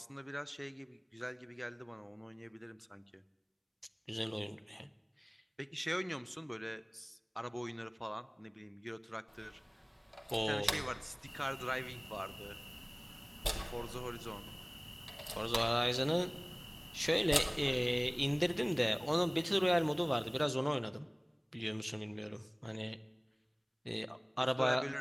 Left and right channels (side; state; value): both; identical; correlation 1.00